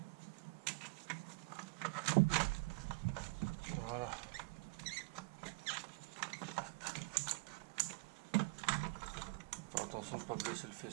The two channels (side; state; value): left; quieter; 29.1 dB